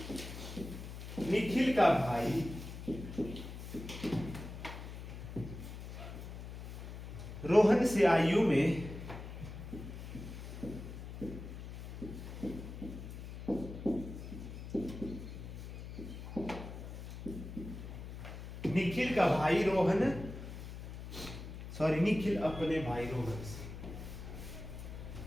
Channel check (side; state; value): left; noise; hum, 10 dB below the sound